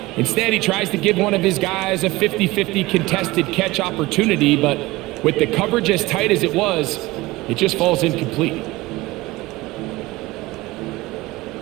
instead he tries to give one of his guys a 50-50 contested catch opportunity, but with the coverage as tight as it was, it just falls incomplete.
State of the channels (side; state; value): left; quieter; 20.0 dB